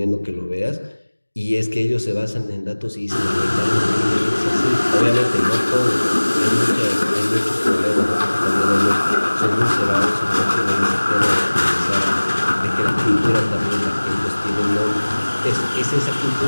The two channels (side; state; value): both; inverted; correlation -1.00